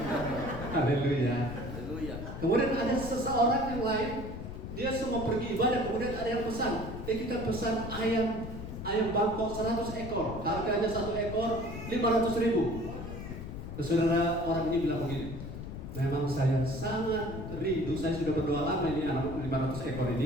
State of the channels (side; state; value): left; noise; rumble, 8 dB below the sound